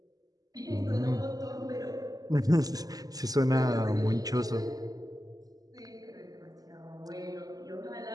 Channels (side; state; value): left; late; 0.18 ms